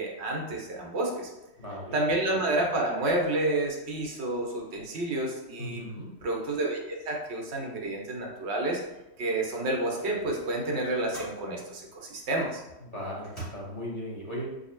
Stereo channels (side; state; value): left; late; 3.1 ms